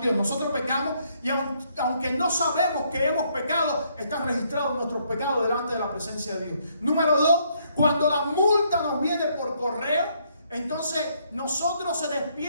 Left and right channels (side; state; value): both; inverted; correlation -0.70